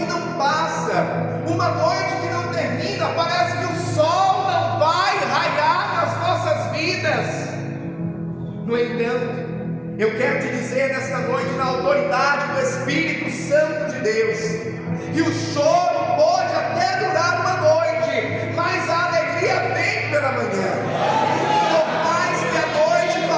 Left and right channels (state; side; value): identical; both; correlation 1.00